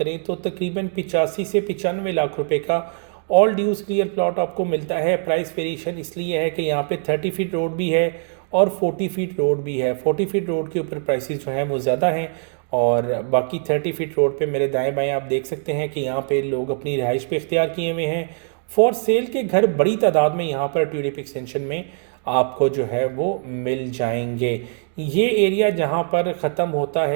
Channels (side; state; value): left; silent; 59 dB below the other